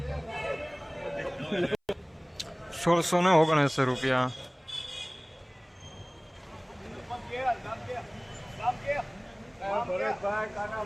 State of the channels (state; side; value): identical; both; correlation 1.00